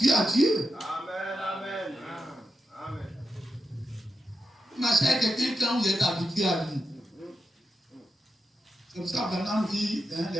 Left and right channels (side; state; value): both; normal; correlation 0.87